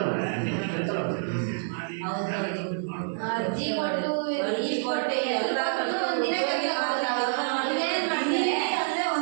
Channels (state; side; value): silent; left; digital silence